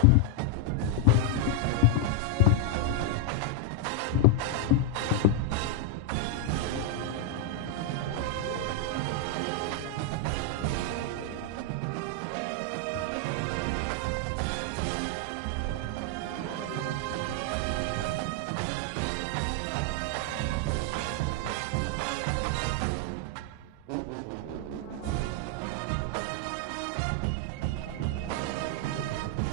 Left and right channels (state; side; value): different; both; correlation 0.00